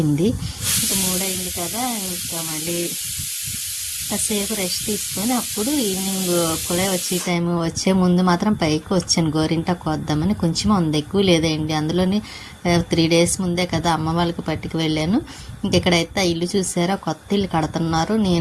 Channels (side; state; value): both; identical; correlation 1.00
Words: ఇంకా 3 అయింది కదా, ఇంకా మళ్ళీ కాసేపు రెస్ట్ తీసుకొని అప్పుడు ఈవినింగ్ కూడా వచ్చే ముందు మాత్రం పైకి వచ్చాను గోరింటాకు వద్దామని. కొంచెం ఉంది, ఎక్కువ లేదండి. అందులోని 3 days ముందే కదా అమ్మ వాళ్ళకి పట్టుకు వెళ్ళాను. ఇంకెక్కడైతే ఇల్లు చూసారా, కొత్త ఇల్లు కడుతున్నారు.